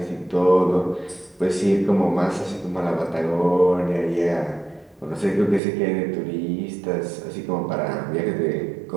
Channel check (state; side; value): drops out; left; at 5.6 s